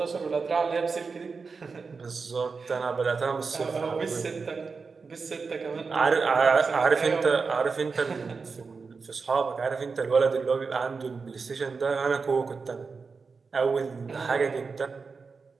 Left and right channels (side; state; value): left; quieter; 4.8 dB